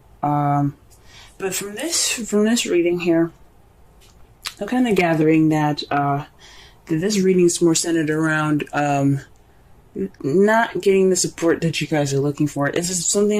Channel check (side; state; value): both; identical; correlation 1.00